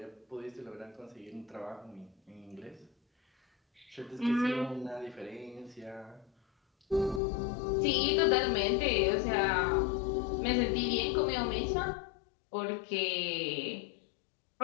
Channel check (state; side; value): drops out; right; at 7.2 s